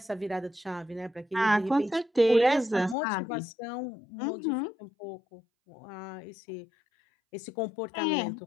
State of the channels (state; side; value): drops out; right; at 3.0 s